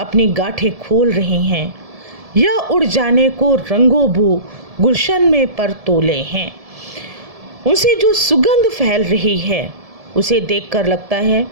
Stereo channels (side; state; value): left; late; 1.7 ms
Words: गांठें खोल रही हैं, या उड़ जाने को रंगोबू गुलशन में पर तोले हैं। उनसे जो सुगंध फैल रही है उसे देखकर लगता है